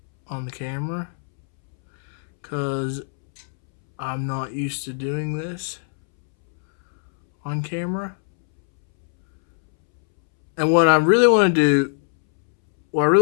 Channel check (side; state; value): right; silent; 65 dB below the other